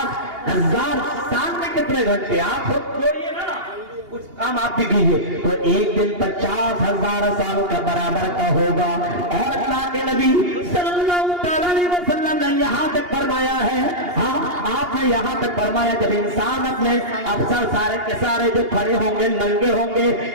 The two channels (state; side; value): late; left; 2.8 ms